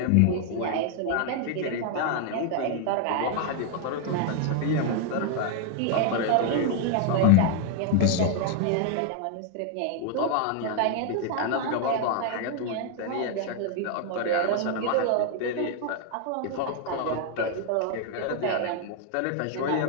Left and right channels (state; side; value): different; both; correlation 0.00